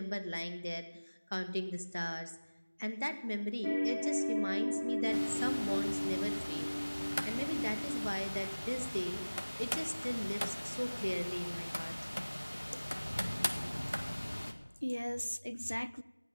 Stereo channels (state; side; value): inverted; both; correlation -1.00